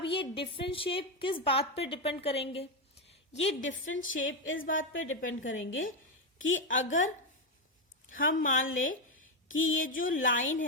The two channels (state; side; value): normal; both; correlation 0.08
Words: ये डिफरेंट शेप किस बात पे डिपेंड करेंगे? ये डिफरेंट शेप इस बात पे डिपेंड करेंगे कि अगर हम मान लें कि ये जो लाइन